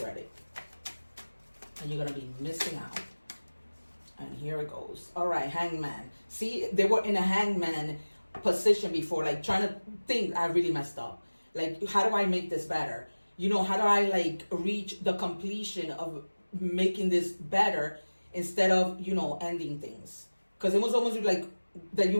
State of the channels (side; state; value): both; inverted; correlation -1.00